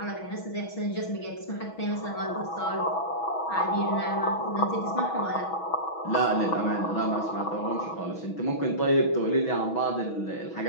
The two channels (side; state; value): right; late; 6.2 ms